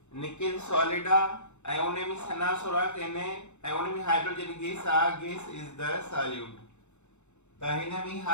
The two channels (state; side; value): late; right; 0.83 ms